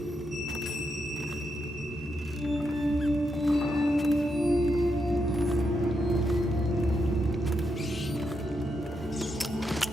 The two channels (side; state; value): both; normal; correlation 0.82